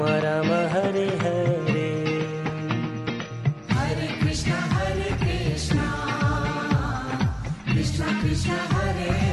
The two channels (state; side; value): identical; both; correlation 1.00